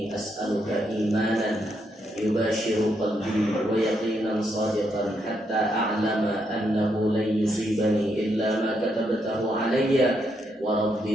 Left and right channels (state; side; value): normal; both; correlation 0.78